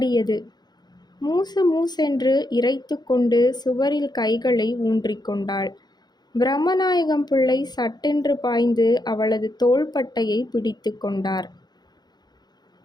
மூசு மூசென்று இறைத்து கொண்டு சுவரில் கைகளை ஊன்றிக்கொண்டாள். பிரம்மநாயகம் பிள்ளை சட்டென்று பாய்ந்து அவளது தோள்பட்டையை பிடித்து கொண்டார்.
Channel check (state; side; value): late; right; 0.20 ms